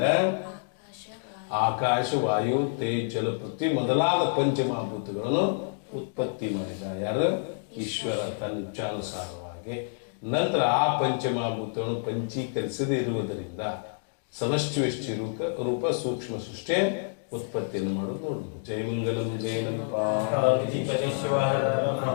ಆಕಾಶ, ವಾಯು, ತೇಜ್, ಜಲ, ಪೃಥ್ವಿ ಮೊದಲಾದ ಪಂಚಮಹಾಭೂತಗಳನ್ನು ಉತ್ಪತ್ತಿ ಮಾಡಿದ. ಯಾರು? ಈಶ್ವರ ತನ್ನ ಇಚ್ಛಾನುಸಾರವಾಗಿ. ನಂತರ ಆ ಪಂಚಮಹಾಭೂತಗಳನ್ನು ಪಂಚೀಕರಿಸದೇ ಇರುವುದರಿಂದ ಸಮಷ್ಟಿ ವ್ಯಷ್ಟಿ ರೂಪ ಸೂಕ್ಷ್ಮ ಸೃಷ್ಟಿ ಉತ್ಪತ್ತಿಯನ್ನು ಮಾಡೋದು ನೋಡು. ಜಯಮಂಗಲಂ ಜಯನಂ पार्वतीपति शिवाहर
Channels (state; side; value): silent; right; digital silence